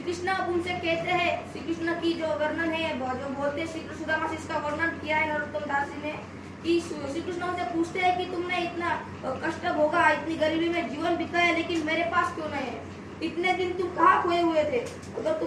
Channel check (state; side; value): identical; both; correlation 1.00